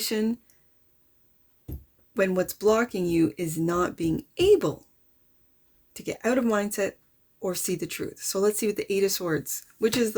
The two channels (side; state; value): both; identical; correlation 1.00